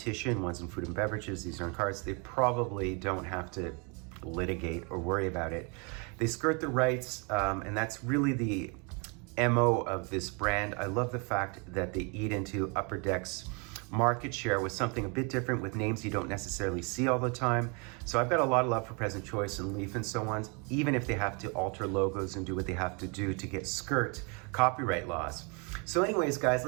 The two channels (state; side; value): quieter; left; 33.2 dB